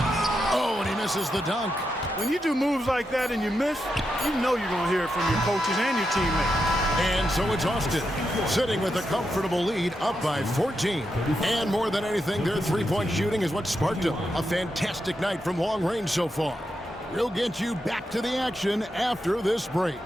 Oh, and he misses the dunk. When you do moves like that and you miss, you know you're going to hear it from your coaches and your teammates. And so it's Austin, sitting with a comfortable lead, up by 14. And more than anything, their three-point shooting is what sparked them. A fantastic night from long range so far. We'll get you back to the action after this break.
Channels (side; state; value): both; normal; correlation 0.85